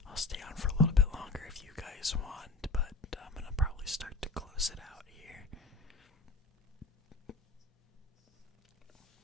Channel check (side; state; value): right; quieter; 3.4 dB